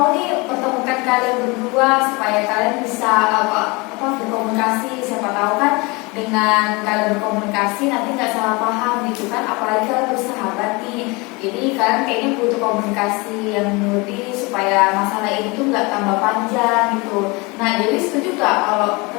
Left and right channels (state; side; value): quieter; right; 26.3 dB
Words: nih pertemukan kalian berdua supaya kalian bisa berkomunikasi. Siapa tahu kan dengan kalian berkomunikasi nanti nggak salah paham gitu kan, apalagi kalian bersahabat nih. Jadi kalian kayaknya butuh komunikasi yang lebih supaya masalah ini tuh nggak tambah panjang gitu. Nah jadi setuju nggak kalau